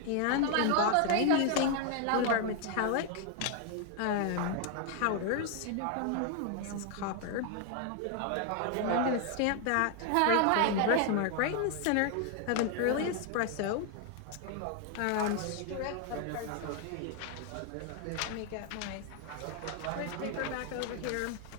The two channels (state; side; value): different; both; correlation 0.00